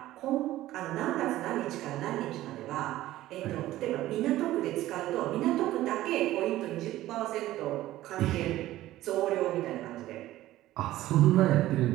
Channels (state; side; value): quieter; left; 15.2 dB